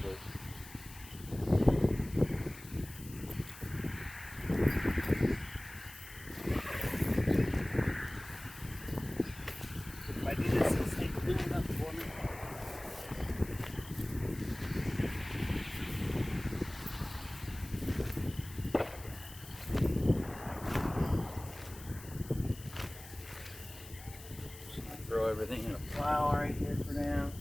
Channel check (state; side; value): noise; left; hiss, 17 dB below the sound